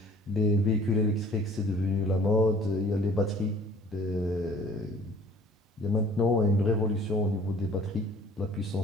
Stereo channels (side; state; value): both; normal; correlation 0.52